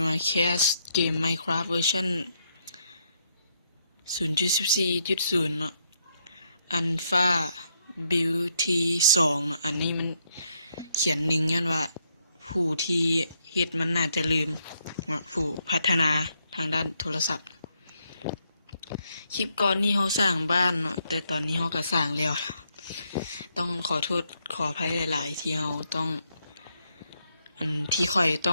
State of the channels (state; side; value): inverted; both; correlation -0.75